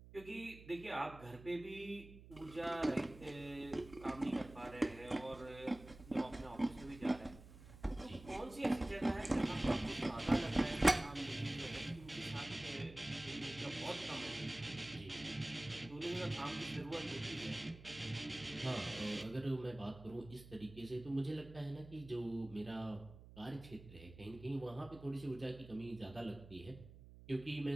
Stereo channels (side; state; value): right; noise; hum, 17 dB below the sound